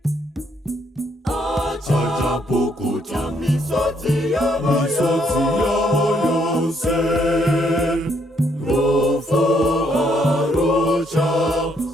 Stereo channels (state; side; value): normal; both; correlation 0.71